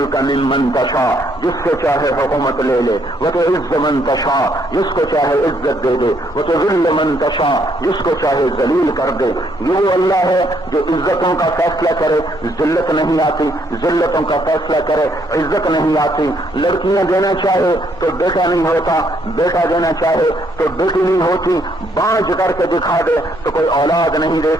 ممن تشاء، جس سے چاہے حکومت لے لے، وتعز من تشاء، جس کو چاہے عزت دے دے، وتذل من تشاء، جس کو چاہے ذلیل کر دے۔ یہ وہ اللہ ہے جو عزتوں کا فیصلہ کرے، ذلت نہیں آتی، ذلتوں کا فیصلہ کرے، عزت نہیں آتی۔ لڑکیاں دینا چاہے تو بیٹا نہیں ہوتا، بیٹا دینا چاہے تو بیٹی نہیں ہوتی، بانجھ کر کے دکھا دے تو کوئی اولاد نہیں دے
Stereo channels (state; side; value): normal; both; correlation 0.70